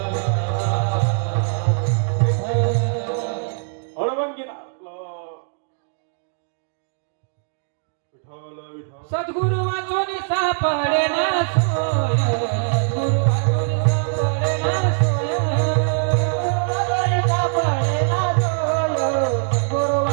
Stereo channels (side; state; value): left; silent; 64 dB below the other